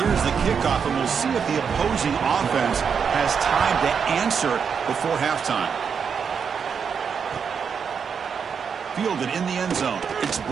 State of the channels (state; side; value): quieter; left; 6.6 dB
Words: the kickoff, and we'll see if the opposing offense has time to answer before halftime. Fielded in the end zone. It's